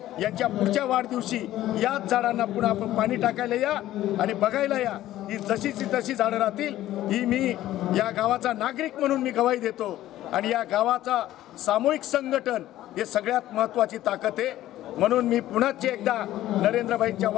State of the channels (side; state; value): right; quieter; 14.2 dB